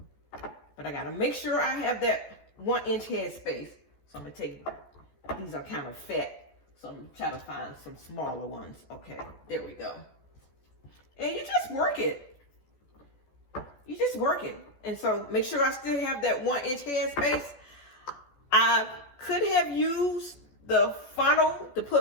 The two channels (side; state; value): right; late; 14 ms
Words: But I got to make sure I have that 1-inch head space. So I'm going to take, these are kind of fat. So I'm going to try to find some smaller ones. Okay, there we go. And you just work it. You just work it. And so make sure I still have that 1-inch head space. I could have used the funnel to